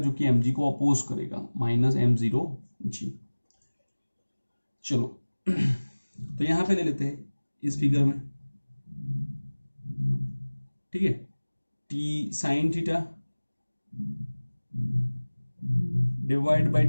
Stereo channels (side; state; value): both; inverted; correlation -1.00